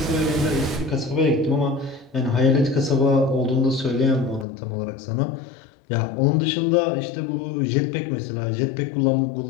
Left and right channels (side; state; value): right; drops out; at 4.5 s